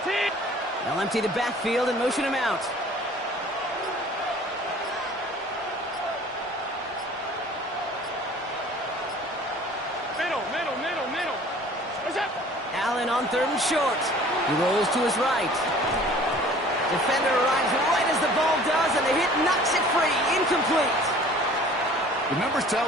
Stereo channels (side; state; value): both; normal; correlation 0.49